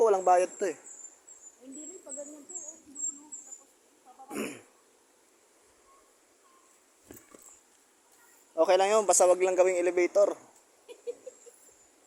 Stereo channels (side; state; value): both; identical; correlation 1.00